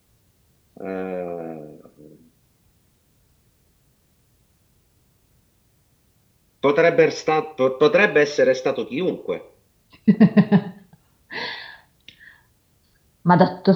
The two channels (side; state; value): both; identical; correlation 1.00